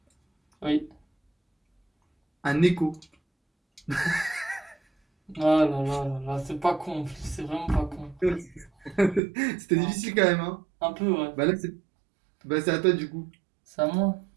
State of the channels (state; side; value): drops out; left; at 9.2 s